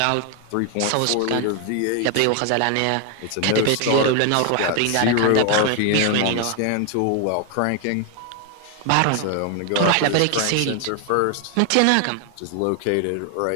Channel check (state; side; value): different; both; correlation 0.01